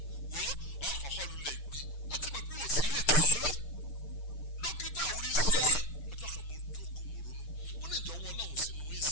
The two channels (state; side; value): late; right; 6.7 ms